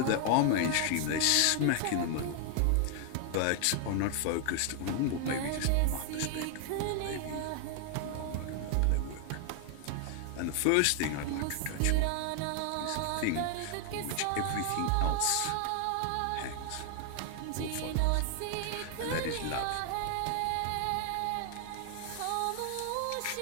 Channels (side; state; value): both; different; correlation 0.00